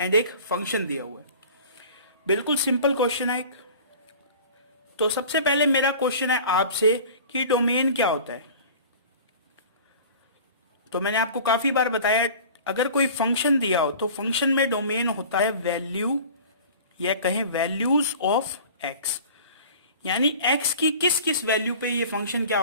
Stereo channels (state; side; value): inverted; both; correlation -0.42